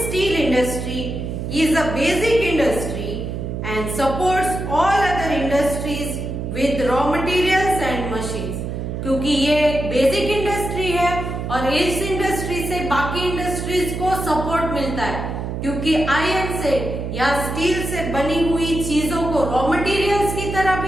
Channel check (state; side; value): noise; right; hum, 5 dB below the sound